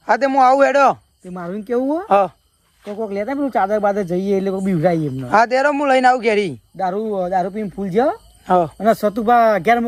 હા તે હું આવું હેડો. તે મારું કેવું હ તો કોક લેતા પેલું ચાદર બાદર જઈએ એટલે કોક બીવરાઈએ એમને. હા તેરો હું લઈને આવું ઘેરી. દારૂ પીને ફૂલ જ હા અને સતુભા ઘેર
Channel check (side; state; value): both; identical; correlation 1.00